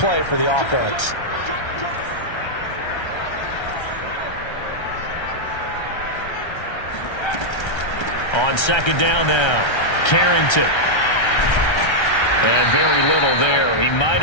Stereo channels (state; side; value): late; right; 1.3 ms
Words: for the offense. On second down now, Carrington. And very little there. He might